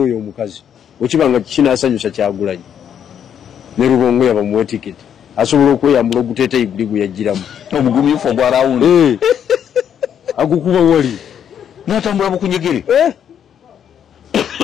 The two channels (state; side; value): quieter; right; 8.9 dB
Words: oyo omukazi okibanga kinaasanyusa Kyagulanyi ne Rubongoya bamuwe tiketi asobola okweyambula oguteeteyi guli gwe yagiramu omugumyufu ogwarawundi agukuba wali n'atambula bukunyegere